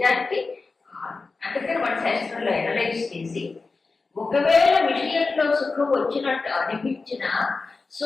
అందుకని మన శాస్త్రంలో అనలైజ్ చేసి, ఒకవేళ విషయంలో సుఖం వచ్చినట్టు అనిపించిన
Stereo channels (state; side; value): quieter; right; 4.0 dB